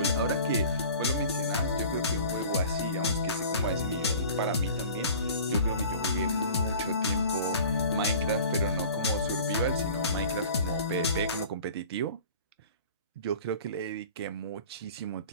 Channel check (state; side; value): inverted; both; correlation -0.43